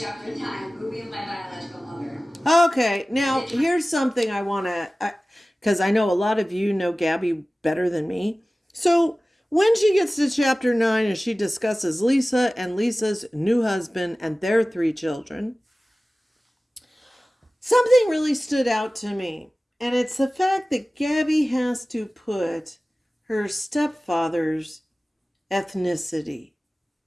9, movie of my biological mother. Okay, now here's something I want to, because I know a lot of you know Gabi better than me. So when she gets to chapter 9 and she discusses Lisa and Lisa's new husband and their 3 children, something really stood out to me. And it's the fact that Gabby has to put her stepfather's ethnicity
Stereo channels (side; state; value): both; normal; correlation 0.97